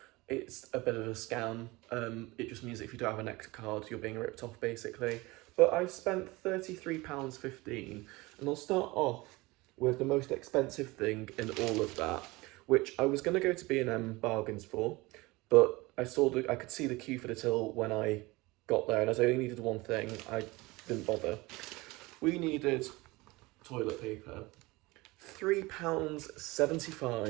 it's a bit of a scam. It just means if you don't have a nectar card, you're being ripped off basically. But I spent £33.15, and I'll start off with the most expensive thing in all of that, which I was going to go to B&M Bargains for, but I could see the queue for the till when I got there, and as I only needed one thing, I didn't bother. We needed toilet paper.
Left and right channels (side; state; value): left; quieter; 22.2 dB